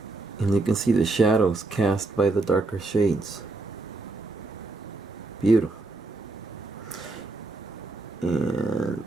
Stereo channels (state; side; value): quieter; left; 3.2 dB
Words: And you can see the shadows cast by the darker shades. Beautiful. And